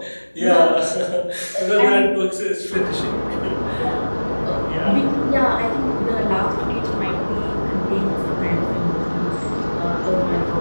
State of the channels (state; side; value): inverted; both; correlation -1.00